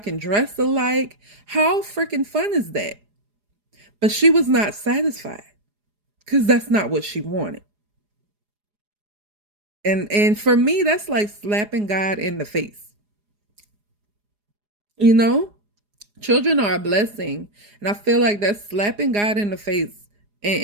dress alike. How freaking fun is that? But she was not satisfied because that's not what she wanted. And for me, that's like slapping God in the face. You know? Children are a blessing. And I feel like that's slapping God in the face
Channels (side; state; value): left; late; 4.8 ms